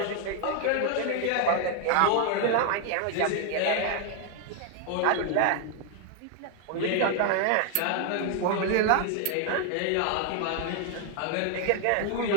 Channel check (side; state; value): both; different; correlation 0.00